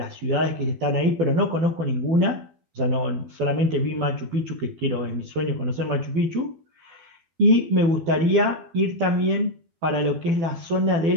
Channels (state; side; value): late; left; 12 ms